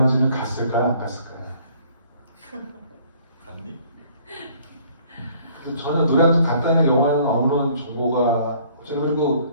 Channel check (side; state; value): both; inverted; correlation -0.58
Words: 갔을까요? 안 갔을까요? 갔니? 저는 노량진 갔다는 영화는 아무런 정보가 그리고